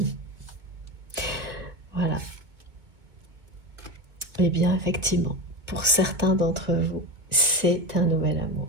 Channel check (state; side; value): late; left; 2.0 ms